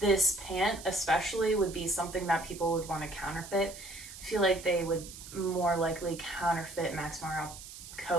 pant especially would be something that people would want to counterfeit. I feel like they would more likely counterfeit Max Mara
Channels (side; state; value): right; noise; hiss, 14 dB below the sound